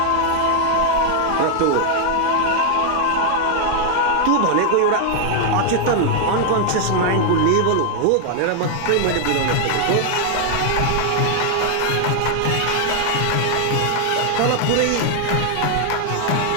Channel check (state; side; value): different; both; correlation 0.00